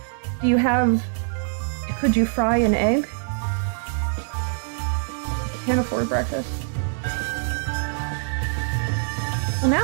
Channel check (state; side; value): silent; left; digital silence